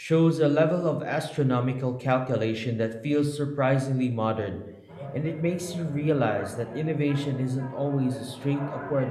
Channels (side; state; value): both; identical; correlation 1.00